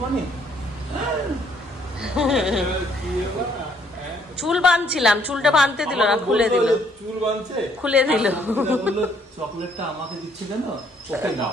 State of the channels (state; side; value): normal; both; correlation 0.66